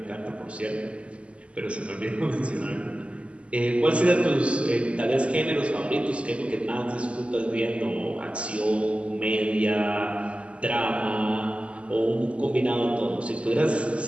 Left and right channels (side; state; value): left; late; 0.058 ms